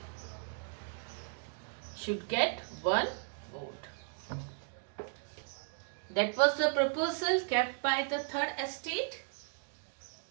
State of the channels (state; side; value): silent; left; digital silence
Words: should get one vote. That was the proposal kept by the third estate.